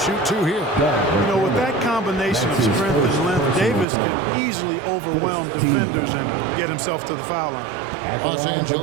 two here. You know, with that combination of strength and length, Davis can easily overwhelm defenders and get himself to the foul line. Los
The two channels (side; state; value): left; drops out; at 3.9 s